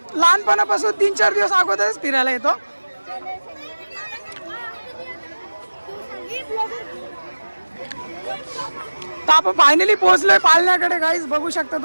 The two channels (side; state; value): both; inverted; correlation -1.00